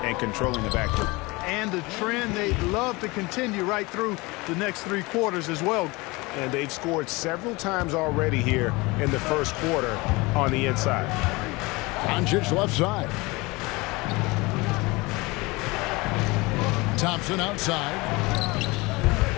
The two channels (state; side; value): quieter; right; 23.9 dB